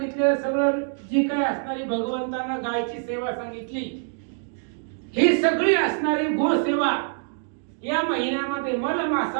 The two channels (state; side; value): silent; left; digital silence